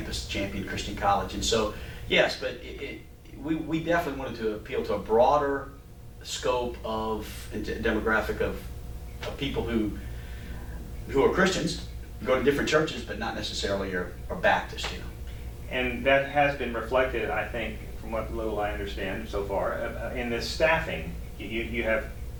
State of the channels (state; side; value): identical; both; correlation 1.00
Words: Champion Christian College. And so, yes, but we definitely wanted to appeal to a broader scope of demographic of people who are Christians, go to different churches, but not necessarily are Baptist. And that has been reflected, I think, from what little I understand so far, in the staffing. You have